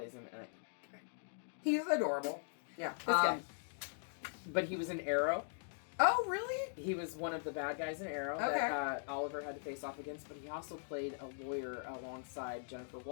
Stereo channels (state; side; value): silent; right; digital silence